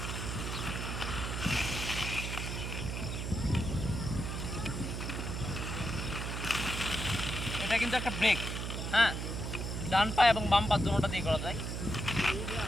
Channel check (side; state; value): right; noise; hum, 4 dB below the sound